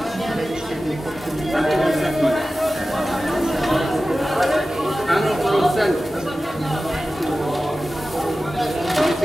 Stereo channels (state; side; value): normal; both; correlation 0.95